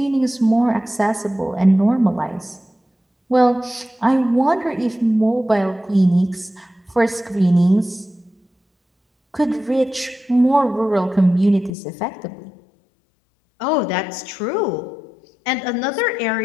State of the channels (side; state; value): right; drops out; at 11.7 s